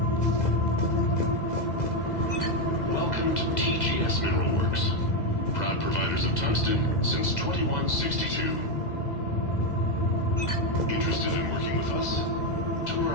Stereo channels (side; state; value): right; late; 2.0 ms